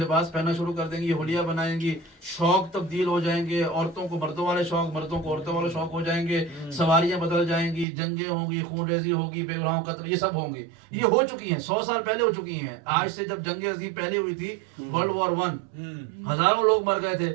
پہننا شروع کر دیں گی، یہ حلیہ بنائیں گی. شوق تبدیل ہو جائیں گے، عورتوں کو مردوں والے شوق، مردوں کو عورتوں والے شوق ہو جائیں گے. سواریاں بدل جائیں گی، جنگیں ہوں گی، خون ریزی ہوگی، بے گناہوں قتل، یہ سب ہوں گی. یہ ہو چکی ہیں، 100 سال پہلے ہو چکی ہیں. آج سے جب جنگ عظیم پہلے ہوئی تھی ورلڈ وار 1 ہزاروں لوگ مر گئے تھے.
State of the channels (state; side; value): drops out; left; at 7.9 s